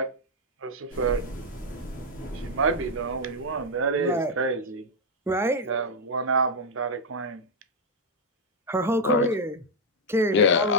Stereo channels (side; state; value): both; normal; correlation -0.01